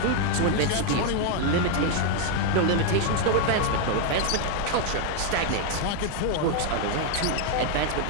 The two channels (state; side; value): different; both; correlation 0.01